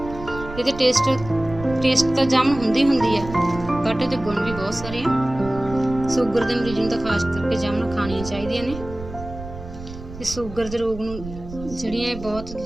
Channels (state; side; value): noise; right; rumble, 13 dB below the sound